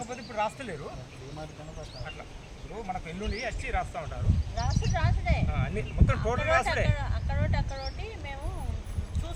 ఇప్పుడు రాస్తలేరు అట్లా. ఇప్పుడు మనకు ఎల్లుండి వచ్చి రాస్తూ ఉంటారు అన్ని మొత్తం టోటల్ రాసుడే.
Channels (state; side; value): identical; both; correlation 1.00